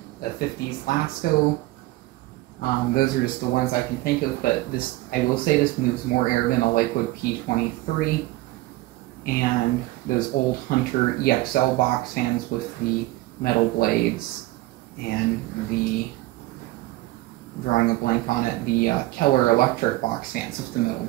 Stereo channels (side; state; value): left; quieter; 18.4 dB